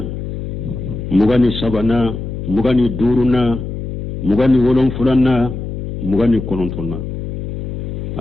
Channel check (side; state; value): left; noise; hum, 6 dB below the sound